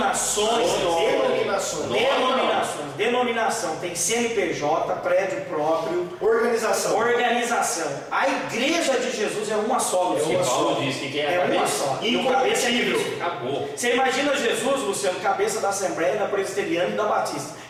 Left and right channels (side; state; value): both; identical; correlation 1.00